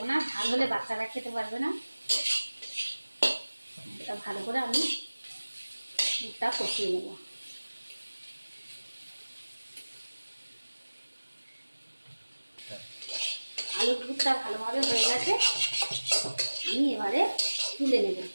না, ঝাল হলে বাচ্চারা খেতে পারবে না। এটা ভালো করে আমি দুধটা কষিয়ে নেব। আলুর দুধটা ভালোভাবে হয়ে গেছে, আমি এবারে তুলে নেব,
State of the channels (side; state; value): both; inverted; correlation -1.00